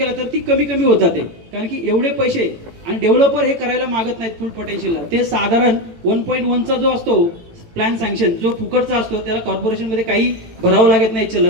तर ती कमी कमी होत जाते. कारण की एवढे पैसे आणि डेव्हलपर हे करायला मागत नाहीत फुल पोटेन्शियलला. ते साधारण 1.1चा जो असतो प्लॅन सँक्शन, जो फुकटचा असतो, त्याला कॉर्पोरेशनमध्ये काही भरावं लागत नाही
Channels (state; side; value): late; left; 18 ms